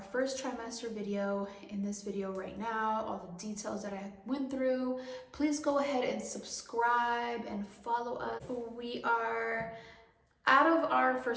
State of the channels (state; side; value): identical; both; correlation 1.00